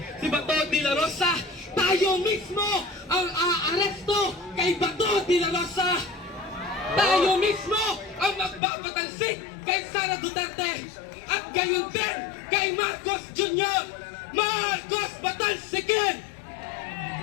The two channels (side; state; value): right; drops out; at 8.6 s